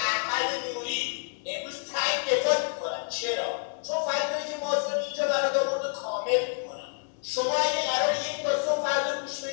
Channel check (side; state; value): right; silent; digital silence